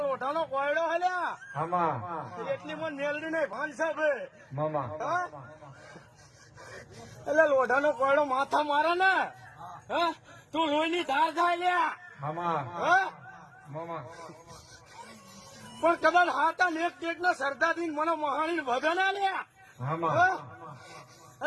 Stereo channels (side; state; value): both; identical; correlation 1.00